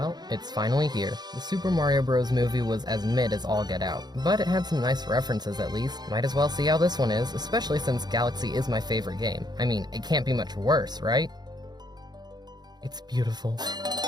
it's finally here. The Super Mario Bros. Movie was as mid as all get out, but it had some nice references at least. Might as well see how this one is, especially since Galaxy is my favorite game. I mean, it can't be much worse, right? It's beautiful.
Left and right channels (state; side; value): late; left; 0.20 ms